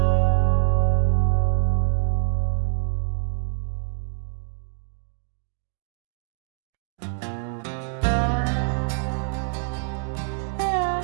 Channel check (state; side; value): silent; left; digital silence